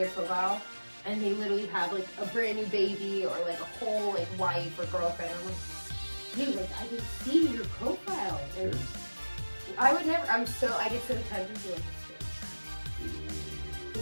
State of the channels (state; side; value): inverted; both; correlation -1.00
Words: profile and they literally have a brand new baby or a whole wife or girlfriend. I'm like, dude, I can see your profile. And I would never. I get so tempted to